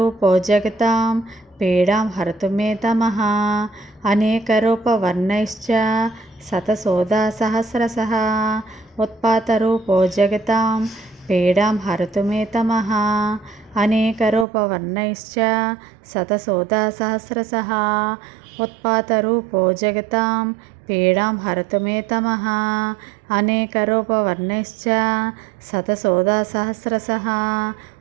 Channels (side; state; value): left; drops out; at 14.5 s